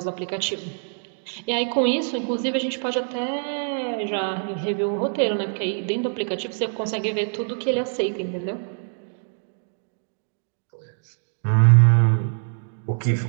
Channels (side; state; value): left; silent; 61 dB below the other